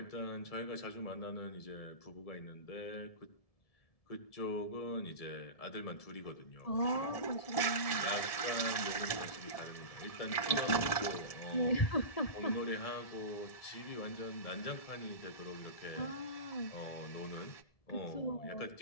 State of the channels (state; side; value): late; right; 1.7 ms